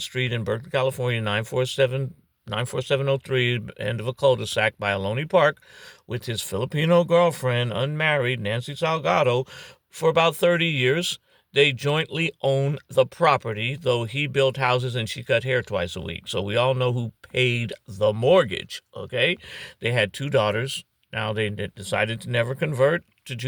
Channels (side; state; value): both; identical; correlation 1.00